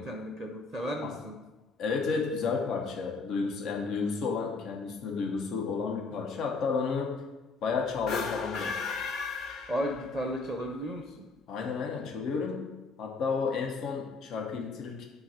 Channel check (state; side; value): quieter; right; 4.0 dB